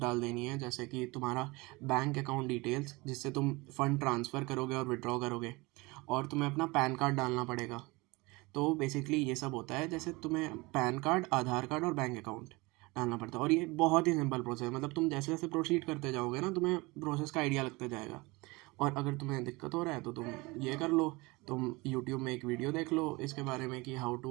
देनी है, जैसे कि तुम्हारा बैंक अकाउंट डिटेल्स जिससे तुम फंड ट्रांसफ़र करोगे और विड्रॉ करोगे, और तुम्हें अपना पैन कार्ड डालना पड़ेगा। तो बेसिकली ये सब होता है, जैसे तुम्हें पैन कार्ड, आधार कार्ड और बैंक अकाउंट डालना पड़ता है। और ये बहुत ही सिंपल प्रोसेस है, मतलब तुम जैसे जैसे प्रोसीड करते जाओगे ना, तुम्हें प्रोसेस का आइडिया लगता जाएगा। और अगर तुम्हें दिक्कत हो रहा है तो तुम ये कर लो, तुम यूट्यूब में एक वीडियो देख लो इसके बारे में कि how to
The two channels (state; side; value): quieter; left; 23.9 dB